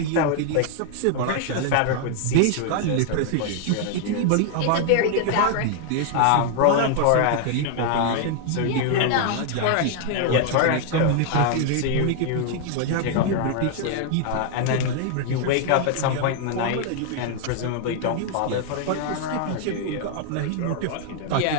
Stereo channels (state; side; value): different; both; correlation 0.00